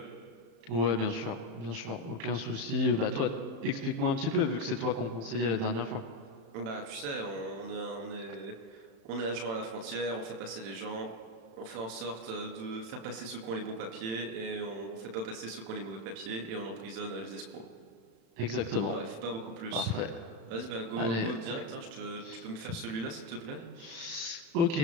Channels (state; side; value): late; left; 36 ms